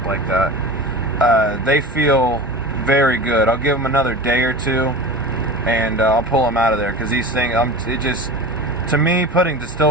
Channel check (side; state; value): both; normal; correlation 0.31